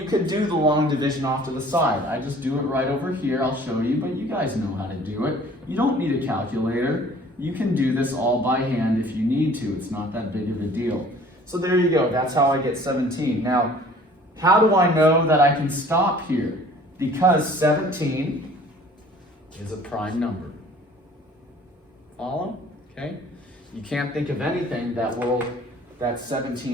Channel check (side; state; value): both; normal; correlation 0.51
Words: could do the long division off to the side. I just do it right over here. I'll show you, but you guys know how to do it. You don't need a calculator. You can do this all by hand if you need to. It's not that big of a deal. So there you go. That's how I get 17. Now, how do I know that I can stop here? Because 17 is a prime number. Follow? Okay? You can't think of anything that